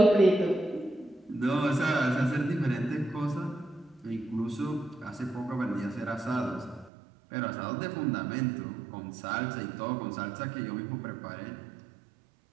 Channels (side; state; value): left; drops out; at 6.9 s